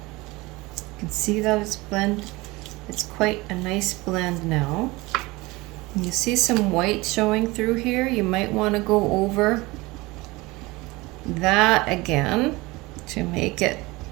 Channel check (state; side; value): quieter; left; 22.3 dB